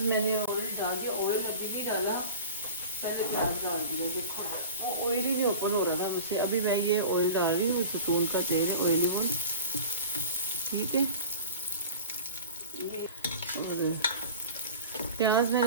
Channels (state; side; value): inverted; both; correlation -0.38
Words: मैंने ऑयल डाल दिया, ऑयल अभी नहीं डाला, पहले प्याज डाल दिया। देखो वो ऑयल ही नहीं ओपन हो रहा था मुझसे। अभी मैं ये ऑयल डाल रही हूँ, सुकून का तेल है, ऑयली ऑयल, ठीक है। और प्याज